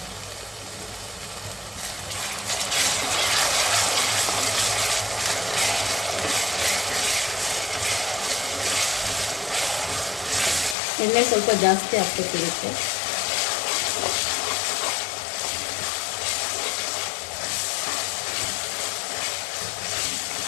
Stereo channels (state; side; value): drops out; right; at 10.8 s